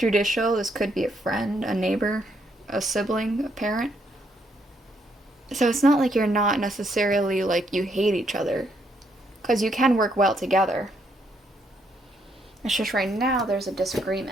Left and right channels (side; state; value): both; normal; correlation 0.74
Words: This could be a friend, a neighbor, a sibling, a parent. So it's not like you're not necessarily like you hate each other, because you can work well together. It's just right now there's a